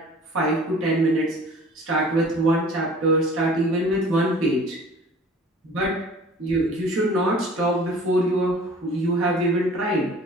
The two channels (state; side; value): normal; both; correlation 0.47